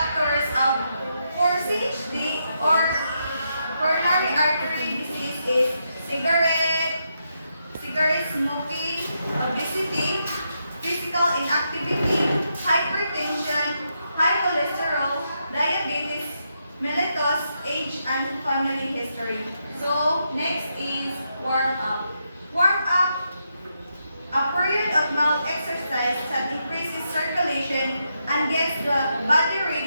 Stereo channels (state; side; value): inverted; both; correlation -0.82